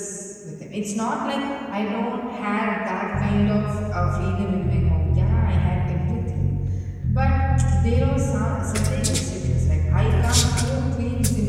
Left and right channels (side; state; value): both; identical; correlation 1.00